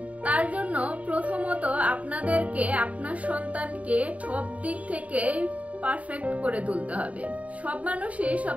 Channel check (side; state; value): left; late; 0.068 ms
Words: তার জন্য প্রথমত আপনাদেরকে আপনার সন্তানকে সব দিক থেকে পারফেক্ট করে তুলতে হবে। সব মানুষই